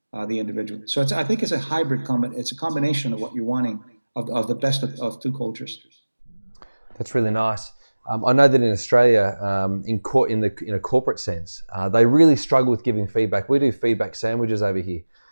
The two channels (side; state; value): both; inverted; correlation -1.00